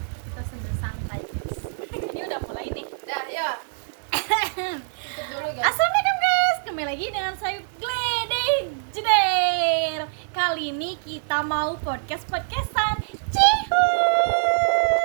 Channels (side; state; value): left; silent; digital silence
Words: Kita sambil santai guys. Ini udah mulai nih. Dah ya. Tutup dulu guys. Assalamualaikum guys, kembali lagi dengan saya Gledek Jeder. Kali ini kita mau podcastan. Cihuy.